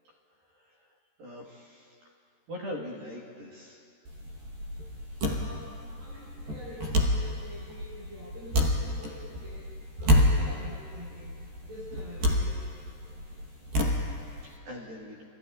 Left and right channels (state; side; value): late; left; 13 ms